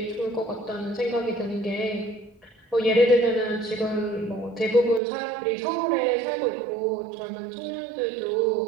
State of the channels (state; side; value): drops out; left; at 5.0 s